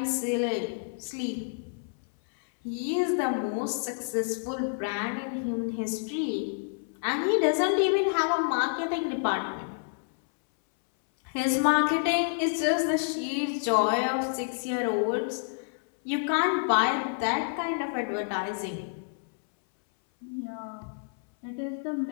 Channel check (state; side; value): silent; right; 59 dB below the other